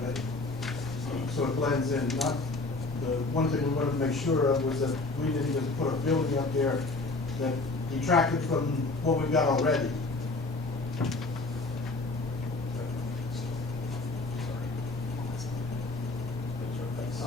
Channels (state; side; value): quieter; right; 3.3 dB